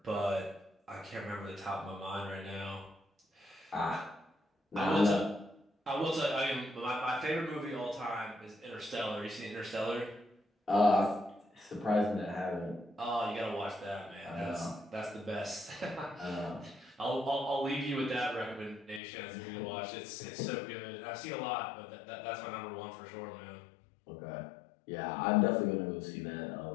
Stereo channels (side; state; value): right; drops out; at 19.0 s